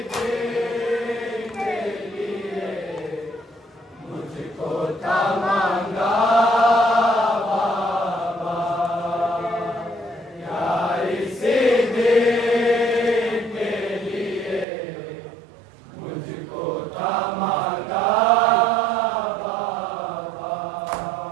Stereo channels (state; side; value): drops out; left; at 14.7 s